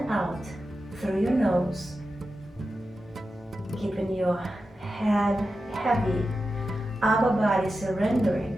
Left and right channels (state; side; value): normal; both; correlation 0.91